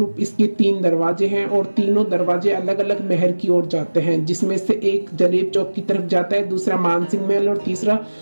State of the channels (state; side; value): inverted; both; correlation -1.00